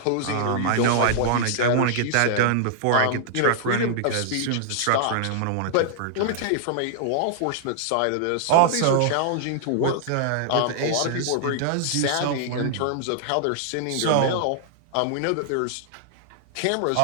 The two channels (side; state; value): both; different; correlation -0.01